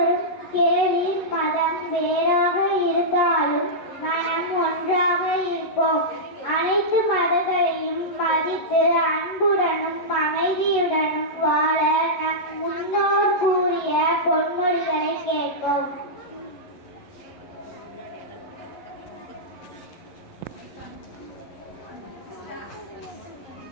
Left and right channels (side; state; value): right; late; 11 ms